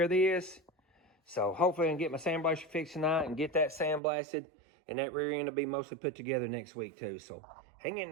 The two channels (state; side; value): drops out; left; at 4.0 s